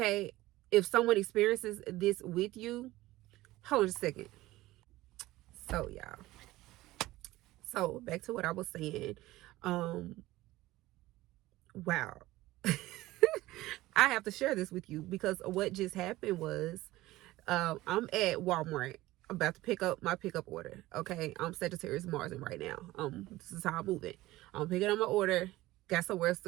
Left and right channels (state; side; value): quieter; left; 17.5 dB